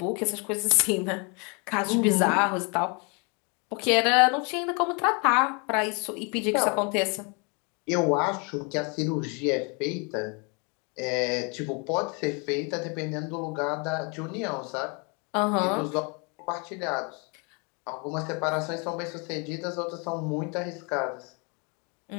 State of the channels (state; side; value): quieter; right; 33.1 dB